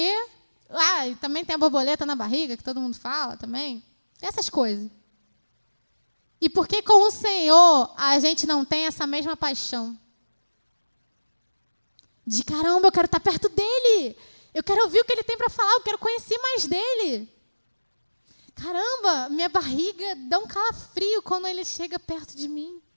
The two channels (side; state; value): both; inverted; correlation -1.00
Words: E também tem a borboleta na barriga, que todo mundo fala também. Essas coisas. E por que com o Senhor a gente não tem essa mesma paixão? De caramba, eu quero estar perto dele. Eu quero ouvir o que ele tem para falar, eu quero conhecer mais dele. Caramba, minha barriga dá um calafrio quando ele chega perto de mim.